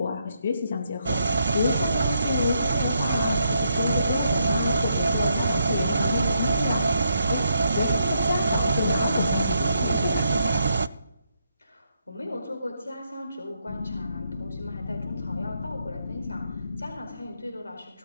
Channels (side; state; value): both; inverted; correlation -0.78